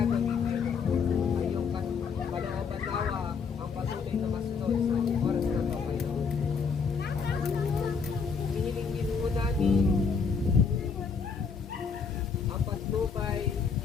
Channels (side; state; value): right; quieter; 5.6 dB